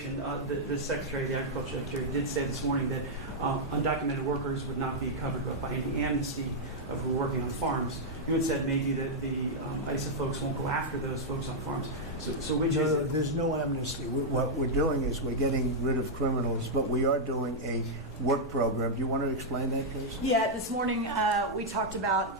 the Secretary, the Agriculture Secretary, did say this morning that undocumented workers would not be covered by any amnesty who are working on farms. You had said maybe that the ISA folks won't go after those folks on farms. So which is it? There's no amnesty. What we're doing is we're getting rid of criminals, but we are doing a work program. Do you want to explain that, please? Yeah, this morning we talked about,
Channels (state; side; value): normal; both; correlation -0.04